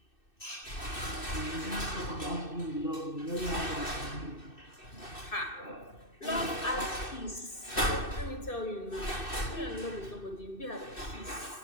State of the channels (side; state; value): right; late; 2.6 ms